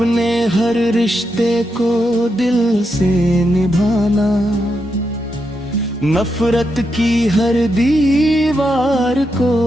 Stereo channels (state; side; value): normal; both; correlation 0.84